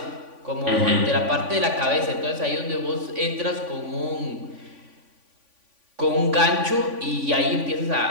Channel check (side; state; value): left; late; 3.5 ms